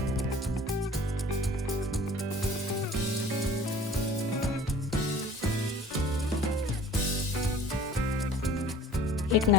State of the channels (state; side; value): normal; both; correlation 0.47